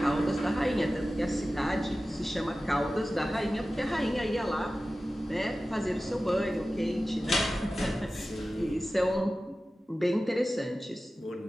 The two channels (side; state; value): both; normal; correlation 0.95